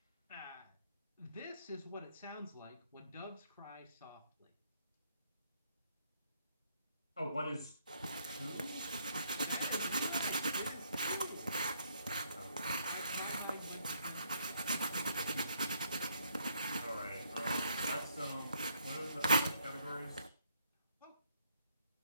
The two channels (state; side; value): inverted; both; correlation -0.70